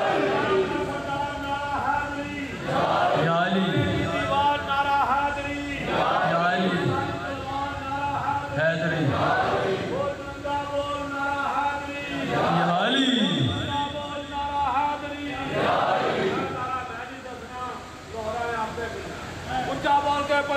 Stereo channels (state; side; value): identical; both; correlation 1.00